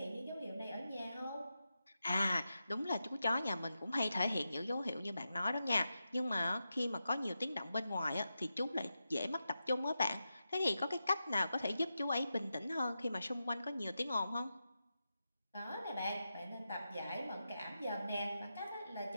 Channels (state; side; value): inverted; both; correlation -0.89